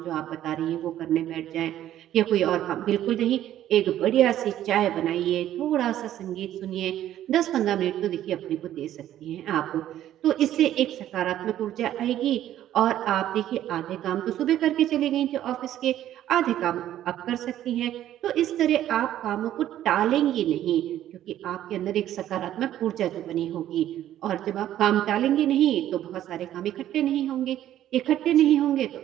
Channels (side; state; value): left; quieter; 12.2 dB